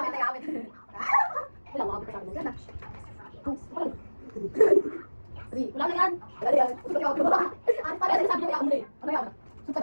na gamit. Wala, mga kapit Yan na. Two. Three. Wala na yan. Wala na yan. Gusto ko yung ako. Ano pa rin, sabi niya ako muli. Ano yan? Sunta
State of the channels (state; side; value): inverted; both; correlation -1.00